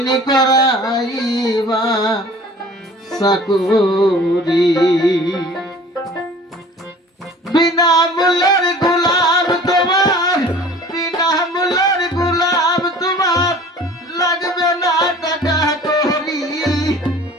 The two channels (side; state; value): both; normal; correlation 0.46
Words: নি করাইবা চাকরি বিনা মূল্যের গোলাম তোমার বিনা মূল্যের গোলাম তোমার লাগবে না টাকা করি